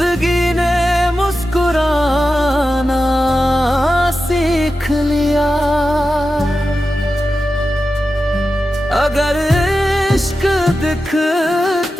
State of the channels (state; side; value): normal; both; correlation 0.92